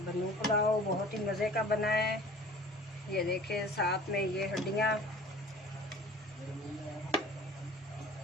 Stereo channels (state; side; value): normal; both; correlation 0.44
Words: पुलाव बहुत ही मज़े का बना है। ये देखें साथ में ये हड्डियाँ,